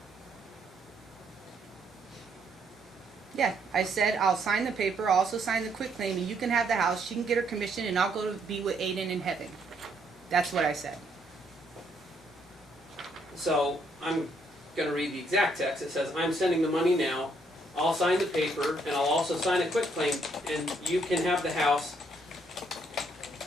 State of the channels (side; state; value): both; normal; correlation 0.71